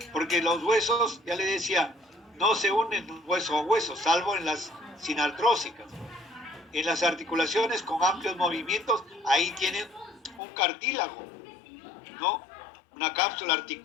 porque los huesos, ya le decía, no se unen hueso a hueso, salvo en las sinartrósicas. En las articulaciones con amplios movimientos, ahí tienen un cartílago, ¿no? Una cápsula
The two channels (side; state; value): right; drops out; at 10.4 s